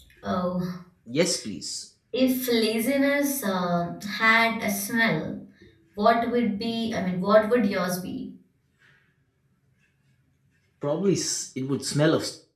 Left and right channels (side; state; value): both; identical; correlation 1.00